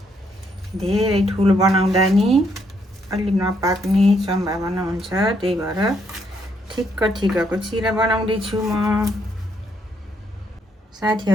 धेरै ठुलो बनाउँदा नि अलि नपाक्ने सम्भावना हुन्छ, त्यही भएर ठिक्क ठिक्कको चिरा बनाउँदैछु म।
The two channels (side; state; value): both; normal; correlation 0.73